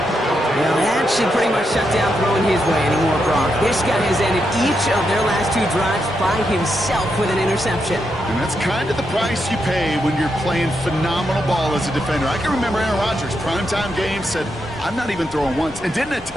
Well, that should pretty much shut down throwing his way anymore, Brock. This guy has ended each of their last 2 drives by himself with an interception. And that's kind of the price you pay when you're playing phenomenal ball as a defender. I can remember Aaron Rodgers, primetime game, said, I'm not even throwing once, and didn't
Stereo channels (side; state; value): both; normal; correlation 0.83